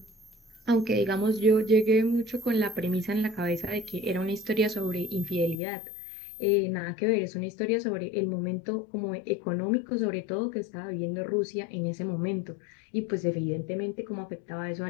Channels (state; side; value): drops out; right; at 5.6 s